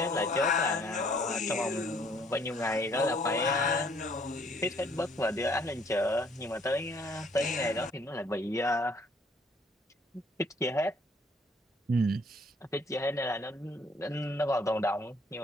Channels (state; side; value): normal; both; correlation 0.63